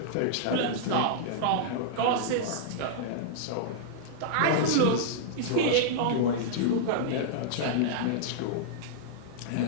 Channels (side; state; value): both; different; correlation -0.02